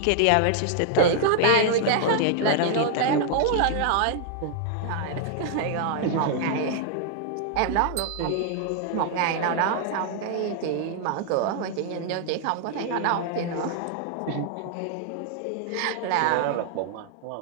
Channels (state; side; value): different; both; correlation -0.01